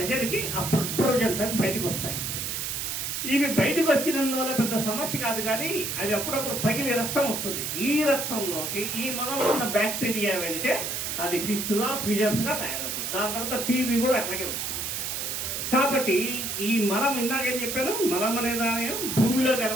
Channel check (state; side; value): noise; right; hiss, 3 dB below the sound